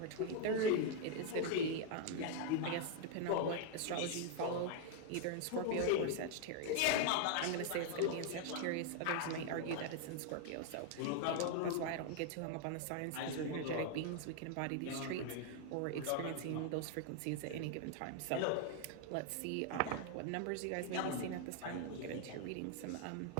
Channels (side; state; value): both; different; correlation 0.00